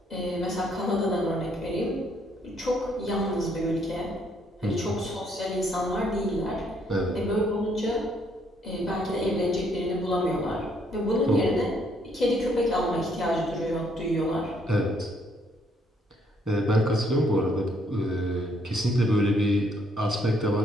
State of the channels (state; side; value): normal; both; correlation 0.69